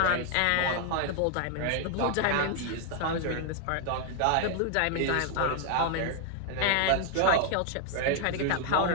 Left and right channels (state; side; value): different; both; correlation 0.00